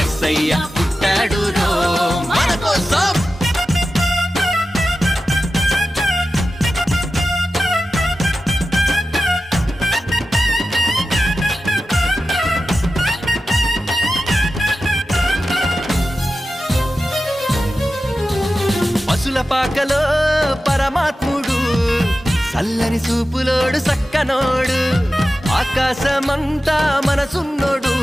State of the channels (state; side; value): normal; both; correlation 0.93